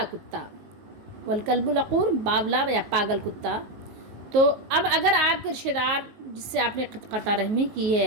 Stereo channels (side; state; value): left; late; 19 ms